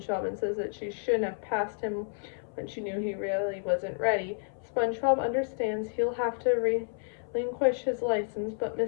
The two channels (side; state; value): right; silent; 57 dB below the other